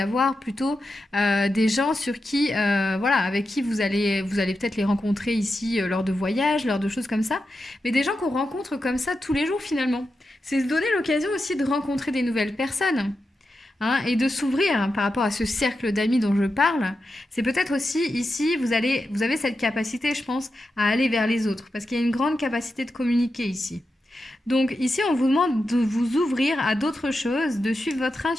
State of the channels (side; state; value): both; normal; correlation 0.89